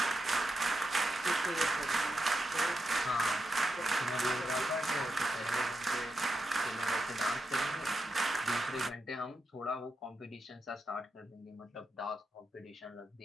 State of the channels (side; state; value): both; normal; correlation 0.86